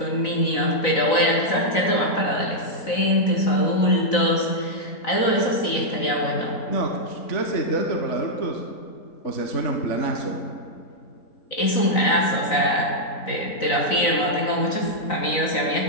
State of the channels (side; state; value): right; late; 3.9 ms